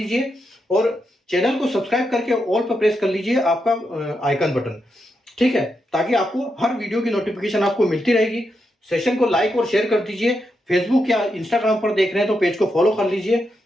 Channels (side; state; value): both; normal; correlation 0.84